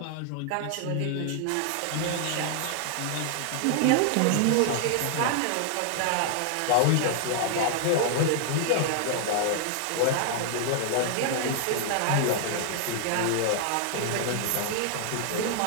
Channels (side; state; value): both; different; correlation 0.00